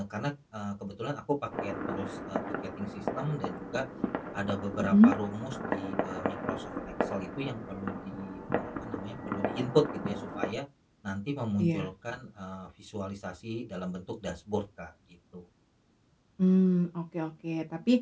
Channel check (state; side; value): identical; both; correlation 1.00